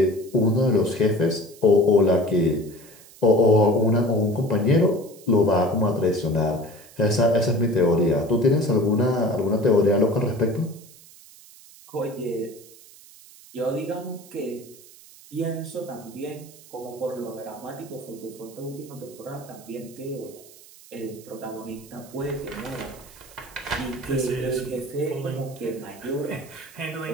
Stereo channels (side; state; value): right; noise; hiss, 22 dB below the sound